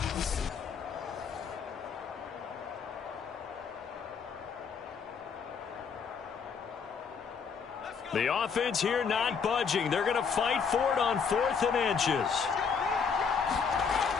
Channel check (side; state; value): right; quieter; 6.1 dB